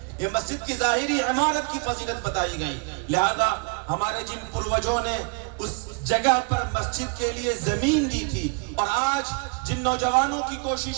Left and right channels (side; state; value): left; quieter; 35.5 dB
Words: یہ مسجد کی ظاہری عمارت کی فضیلت بتائی گئی۔ لہذا ہمارے جن پروجوں نے اس جگہ پر مسجد کے لیے زمین دی تھی، اور آج جن نوجوانوں کی